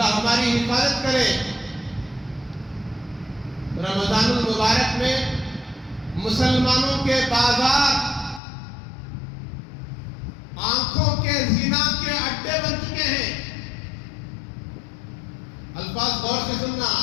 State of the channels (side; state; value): right; drops out; at 8.4 s